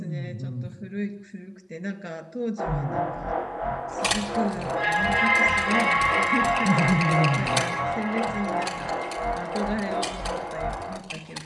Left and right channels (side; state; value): both; identical; correlation 1.00